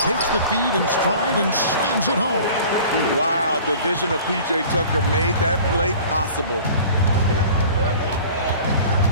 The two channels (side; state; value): both; inverted; correlation -0.44